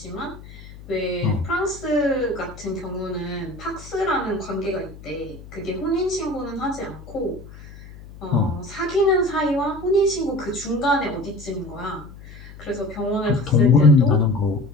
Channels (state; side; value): noise; left; hum, 17 dB below the sound